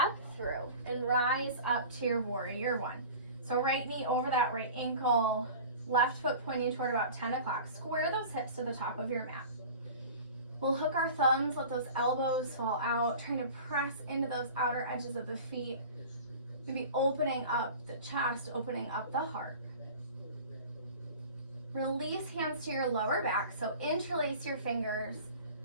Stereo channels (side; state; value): both; inverted; correlation -0.39